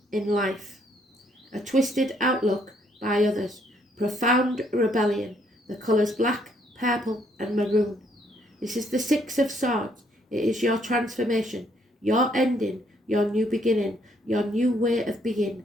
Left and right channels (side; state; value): both; normal; correlation 0.69